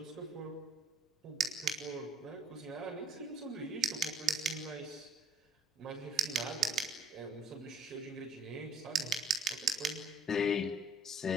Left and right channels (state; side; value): normal; both; correlation 0.61